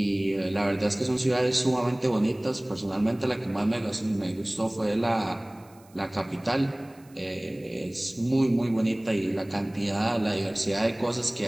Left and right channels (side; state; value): right; noise; hiss, 29 dB below the sound